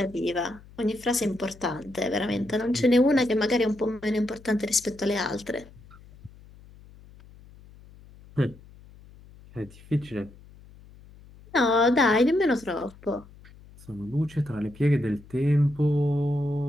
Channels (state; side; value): noise; left; hum, 22 dB below the sound